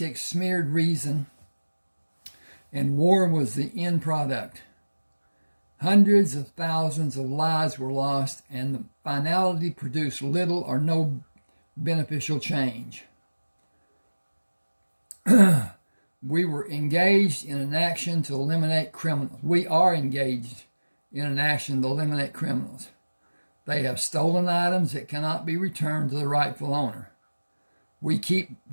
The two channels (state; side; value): inverted; both; correlation -1.00